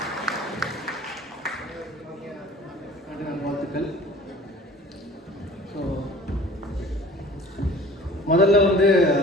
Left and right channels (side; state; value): both; normal; correlation 0.46